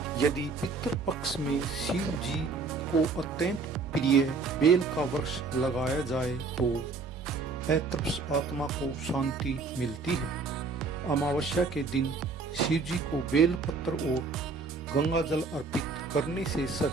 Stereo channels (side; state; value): left; quieter; 4.2 dB